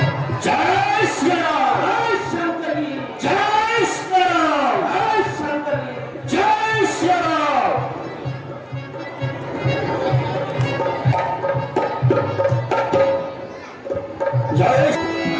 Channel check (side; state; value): both; identical; correlation 1.00